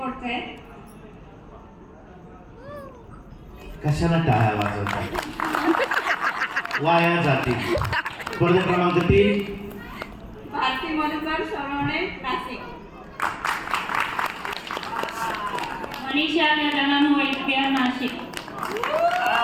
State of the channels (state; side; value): identical; both; correlation 1.00